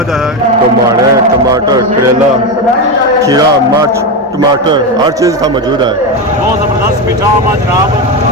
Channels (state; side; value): normal; both; correlation 0.14